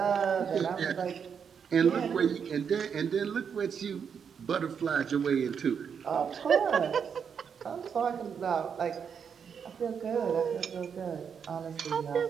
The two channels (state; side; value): quieter; left; 7.0 dB